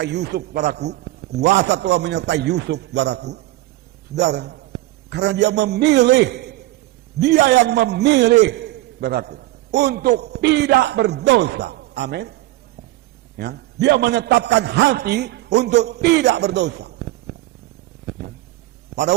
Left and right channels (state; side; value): quieter; left; 17.7 dB